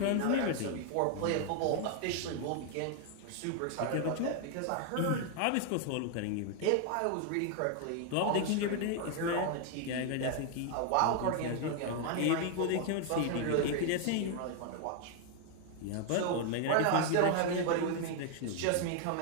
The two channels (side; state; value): both; different; correlation 0.00